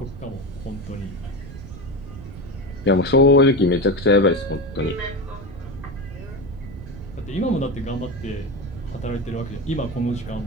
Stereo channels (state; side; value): noise; right; rumble, 12 dB below the sound